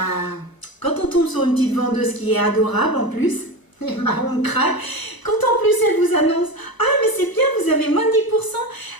quand on tombe sur une petite vendeuse qui est adorable en plus, on craque. Quand en plus elle vous annonce « Ah mais c'est bien, vous avez moins de 10%.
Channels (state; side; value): late; right; 1.0 ms